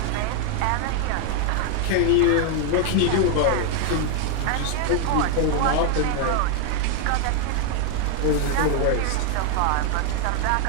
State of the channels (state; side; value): different; both; correlation 0.00